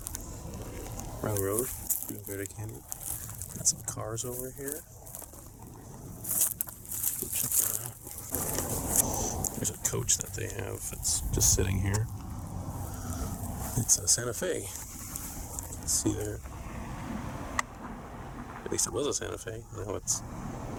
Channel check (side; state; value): both; identical; correlation 1.00